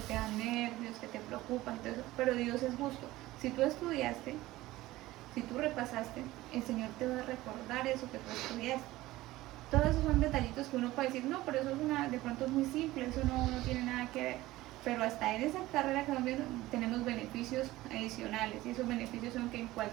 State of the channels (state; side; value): quieter; left; 17.4 dB